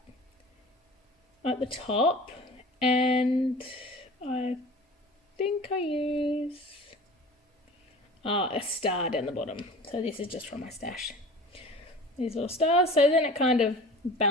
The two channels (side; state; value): both; normal; correlation 0.40